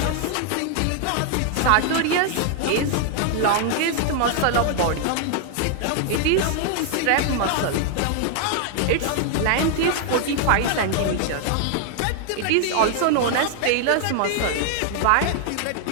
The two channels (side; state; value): both; different; correlation 0.00